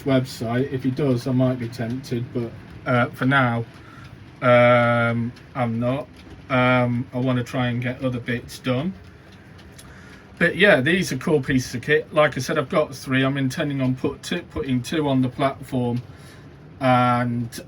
website. If he does, I might be tempted, but for now I'm not. I want to try and get other bits done. But yeah, these are cool pieces of kit. Like I said, I've got 3. I'm intending on putting 2 on the platform and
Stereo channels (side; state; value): both; identical; correlation 1.00